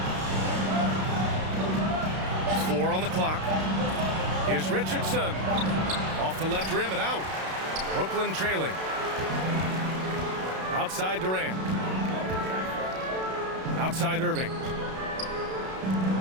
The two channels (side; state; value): left; late; 32 ms